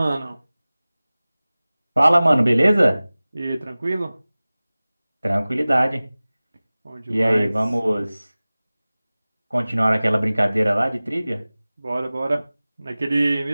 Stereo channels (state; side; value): inverted; both; correlation -0.98